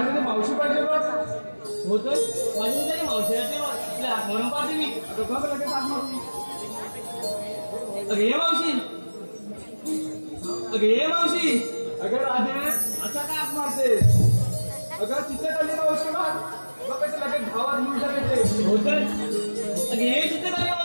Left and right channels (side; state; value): both; inverted; correlation -1.00